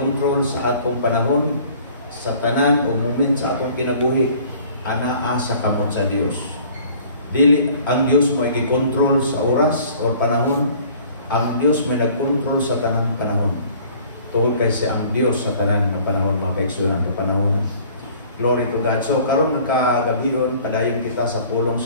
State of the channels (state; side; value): inverted; both; correlation -0.52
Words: sa atong panahon, sa tanan o moment sa atong kinabuhi, anaa sa kamot sa Dios. Dili ang Dios mo i-control sa oras o panahon, ang Dios may nag-control sa tanang panahon. Tungkol kay siya ang Dios sa tanan ng panahon, mga kaigsunan ng panahon. Glory to God. So, karon nagkagabion, padayon kita sa pulong